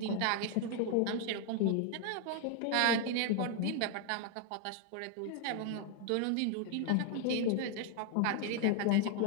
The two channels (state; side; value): different; both; correlation 0.00